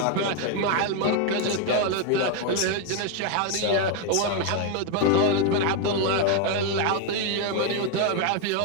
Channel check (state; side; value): different; both; correlation 0.01